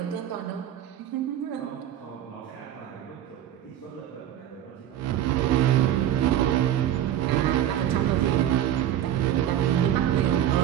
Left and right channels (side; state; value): left; quieter; 11.2 dB